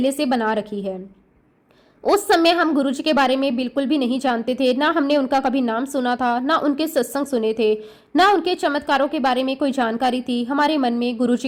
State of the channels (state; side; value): identical; both; correlation 1.00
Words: से बना रखी है। उस समय हम गुरुजी के बारे में बिल्कुल भी नहीं जानते थे, ना हमने उनका कभी नाम सुना था, ना उनके सत्संग सुने थे, ना उनके चमत्कारों के बारे में कोई जानकारी थी। हमारे मन में